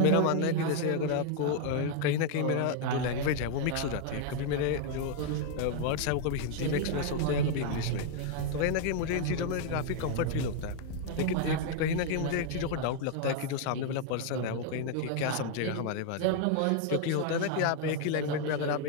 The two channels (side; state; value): both; different; correlation 0.00